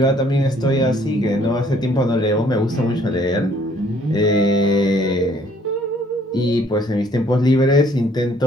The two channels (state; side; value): normal; both; correlation 0.62